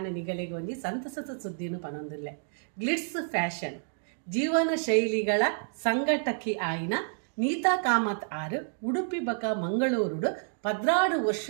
ನಿಗಲೆಗೆ ಒಂಜಿ ಸಂತಸದ ಸುದ್ದಿನು ಪನೊಂದುಲ್ಲೆ. ಗ್ಲಿಟ್ಸ್ ಫ್ಯಾಷನ್ ಜೀವನ ಶೈಲಿಗಳ ಸಂಘಟಕಿ ಆಯಿನ ನೀತಾ ಕಾಮತ್ ಆರು ಉಡುಪಿ ಬಕ ಮಂಗಳೂರುಡು 16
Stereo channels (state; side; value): silent; left; digital silence